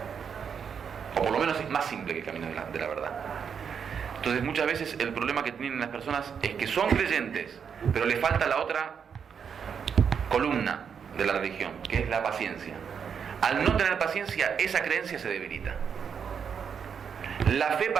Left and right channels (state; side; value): quieter; left; 7.0 dB